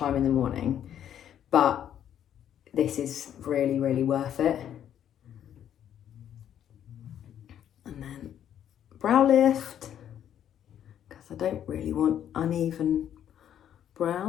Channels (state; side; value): quieter; right; 10.0 dB